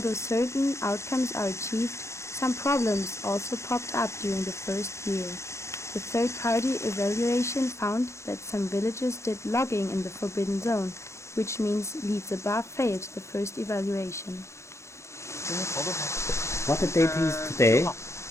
certain outcomes are achieved, some problems also popped up during the first year. The third-party evaluation found that some villages did logging in the forbidden zone, which means Liziba failed the first evaluation. What the date is today?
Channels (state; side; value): late; right; 0.14 ms